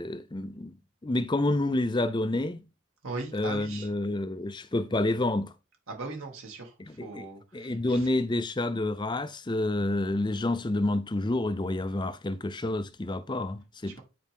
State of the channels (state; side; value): normal; both; correlation 0.77